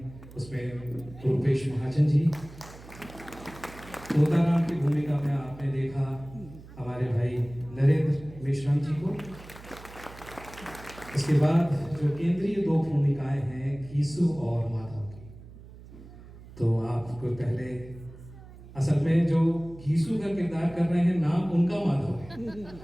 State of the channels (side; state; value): right; noise; hum, 18 dB below the sound